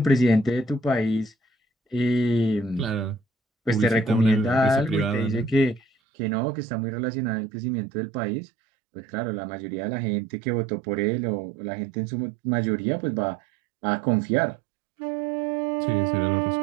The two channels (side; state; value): left; drops out; at 5.9 s